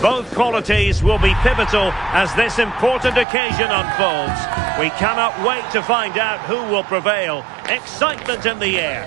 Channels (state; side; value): drops out; left; at 3.2 s